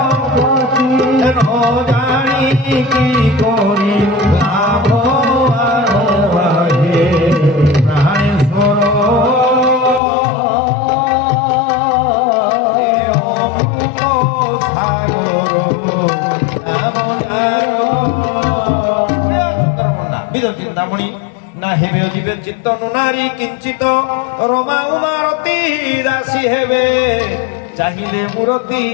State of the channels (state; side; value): drops out; right; at 10.0 s